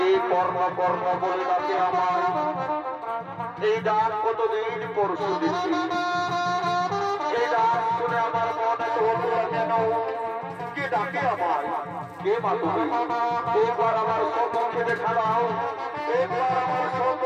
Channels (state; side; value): identical; both; correlation 1.00